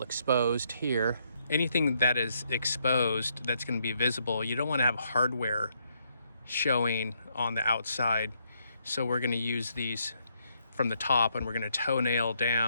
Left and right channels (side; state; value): both; inverted; correlation -0.75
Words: exposed here. Anything that is exposed that's gonna be visible, you don't wanna have hardware showing on the outside. So we're gonna use these from the top, and we're gonna toenail